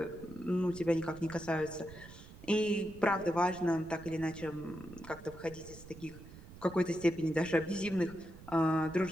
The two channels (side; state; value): right; noise; rumble, 17 dB below the sound